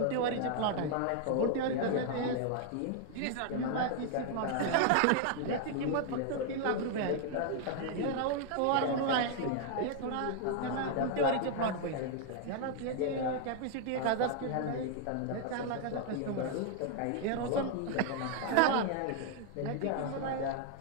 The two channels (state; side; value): different; both; correlation 0.00